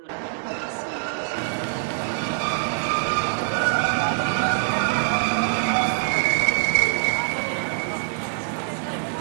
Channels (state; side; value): silent; left; digital silence